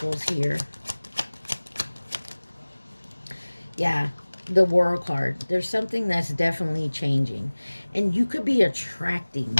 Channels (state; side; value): inverted; both; correlation -1.00